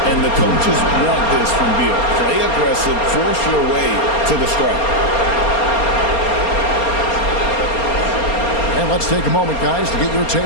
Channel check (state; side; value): late; right; 4.3 ms